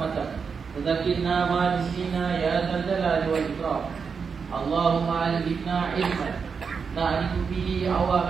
Tadakirna ma'nisina ya dzal-jalali wal ikram. Allahumma alifna ilman na'rifu bihi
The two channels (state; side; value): quieter; left; 5.7 dB